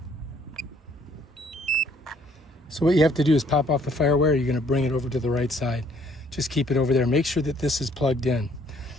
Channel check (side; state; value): both; normal; correlation 0.63